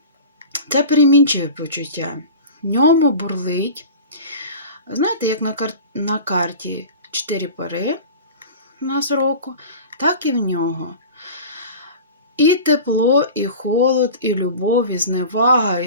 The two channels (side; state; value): both; inverted; correlation -0.36